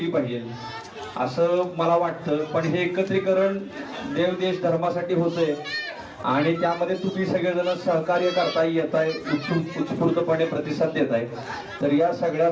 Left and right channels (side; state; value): both; identical; correlation 1.00